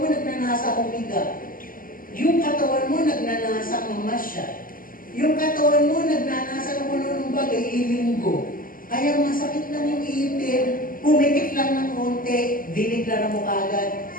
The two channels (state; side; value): late; right; 0.41 ms